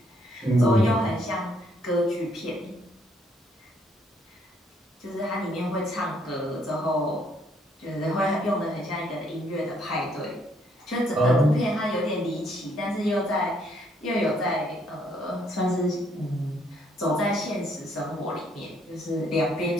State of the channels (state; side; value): normal; both; correlation 0.69